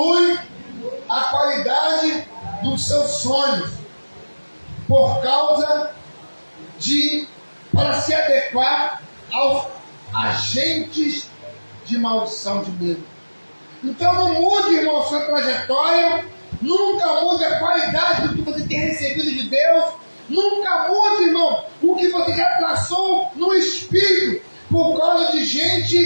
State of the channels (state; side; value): inverted; both; correlation -1.00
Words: a qualidade dos seus sonhos por causa para se adequar aos agentes de maldição de medo. Então não mude, irmão, sua trajetória, nunca mude a qualidade do que você tem recebido de Deus, nunca mude, irmão, o que você já traçou no espírito por causa de